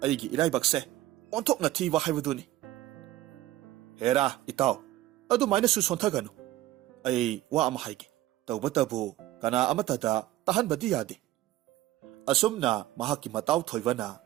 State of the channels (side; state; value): left; quieter; 15.4 dB